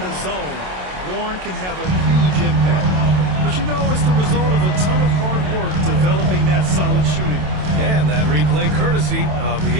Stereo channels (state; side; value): late; left; 27 ms